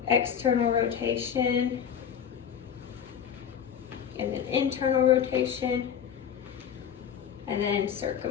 external rotation, and then internal rotation, and then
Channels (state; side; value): quieter; right; 8.4 dB